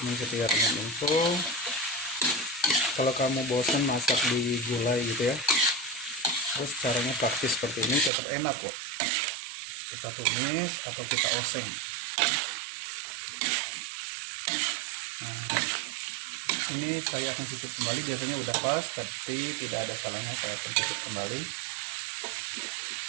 setia Ragam Info. Kalau kamu bosan masak di gulai gitu ya, terus caranya praktis seperti ini tetap enak kok. Kita tumis atau kita oseng. Nah, ini saya akan cicip kembali, biasanya udah pas tapi tidak ada salahnya saya akan cicip kembali.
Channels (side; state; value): left; drops out; at 8.1 s